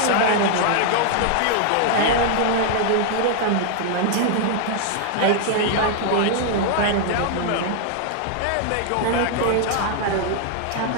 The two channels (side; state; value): both; different; correlation 0.00